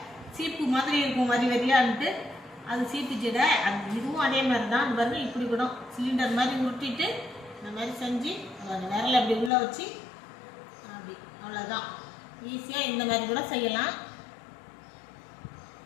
சீப்பு மாதிரி இருக்கும் வரி வரியான்ட்டு, அது சீப்பு சீடை. இதுவும் அதே மாதிரி தான். அது பாருங்கள், இப்படி கூட சிலிண்டர் மாதிரி உருட்டிட்டு இந்த மாதிரி செஞ்சு விரல அப்படி உள்ளே வச்சு அப்படி, அவ்வளோதான். ஈஸியாக இந்த மாதிரி கூட செய்யலாம்.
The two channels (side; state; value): right; drops out; at 9.5 s